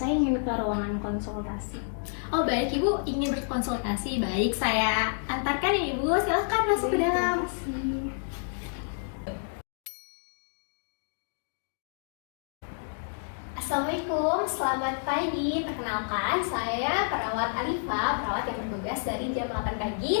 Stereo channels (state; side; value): silent; right; digital silence